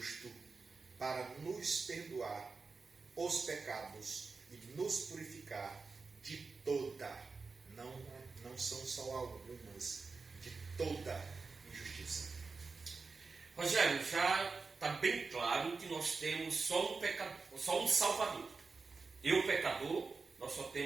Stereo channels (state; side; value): quieter; left; 4.4 dB